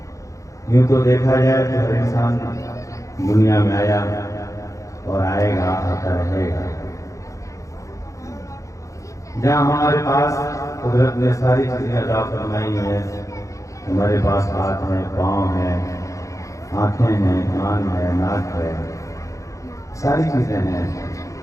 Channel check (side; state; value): right; late; 0.15 ms